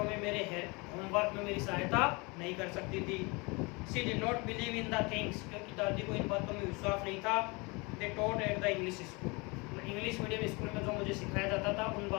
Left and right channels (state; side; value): quieter; right; 27.7 dB